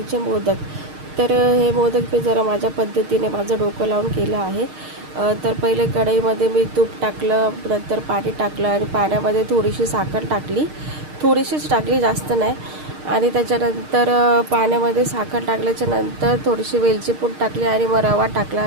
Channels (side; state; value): left; late; 6.5 ms